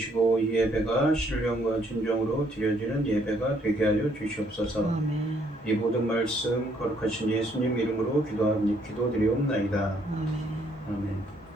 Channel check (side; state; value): both; normal; correlation 0.67